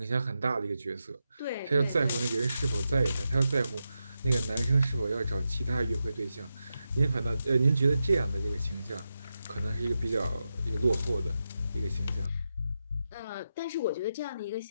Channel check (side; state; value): both; inverted; correlation -0.88